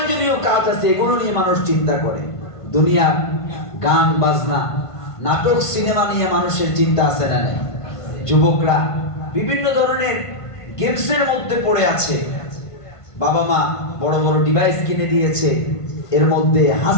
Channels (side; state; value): right; late; 1.5 ms